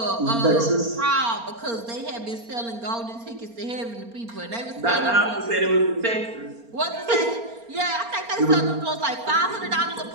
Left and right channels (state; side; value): late; left; 4.3 ms